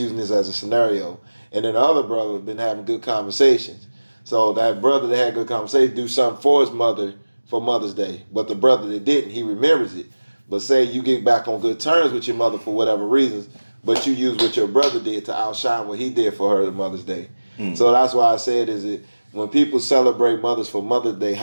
this as a scenario. And then the other brother has been having good conversations. So that brother that had good conversations do something for his mother for Mother's Day. But the brother that didn't, he remembers it. But say you get back on good terms with your mother for whatever reasons, but you use what your brother did to outshine what he did for her on Mother's Day. So that's why I said, is it when people celebrate mothers for Mother's Day,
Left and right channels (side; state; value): both; inverted; correlation -1.00